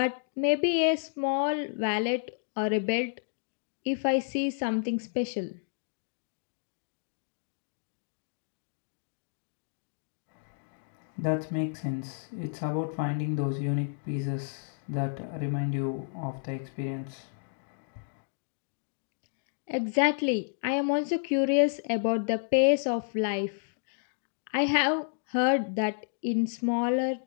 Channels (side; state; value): right; silent; digital silence